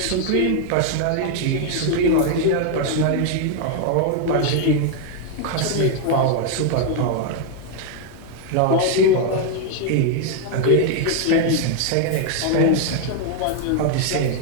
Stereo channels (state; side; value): different; both; correlation 0.00